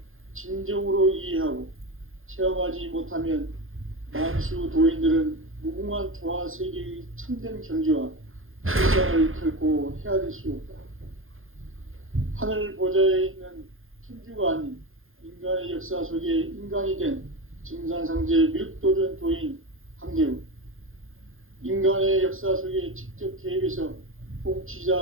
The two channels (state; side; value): late; left; 0.60 ms